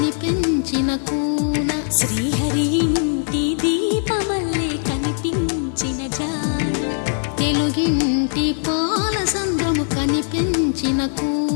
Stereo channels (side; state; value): right; silent; digital silence